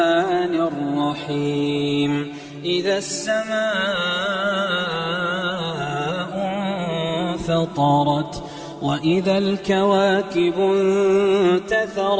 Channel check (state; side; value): identical; both; correlation 1.00